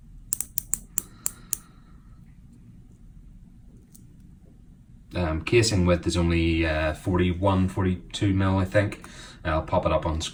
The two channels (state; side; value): identical; both; correlation 1.00